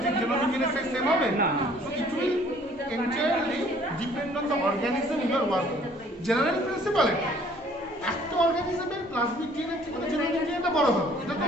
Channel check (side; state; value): both; normal; correlation 0.57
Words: ঠিক জেনোমিক ডিএনএ সাইজ সেম হবে না। So it will entirely depend on the organism you are working. General principle এটা, একটা অর্গানিজমের প্লাজমিক ডিএনএ থেকে জেনোমিক ডিএনএটা বড় হবে, এটা তো